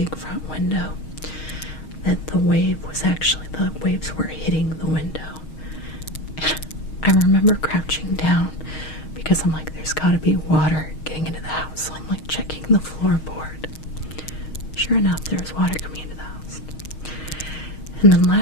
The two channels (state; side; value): late; right; 6.4 ms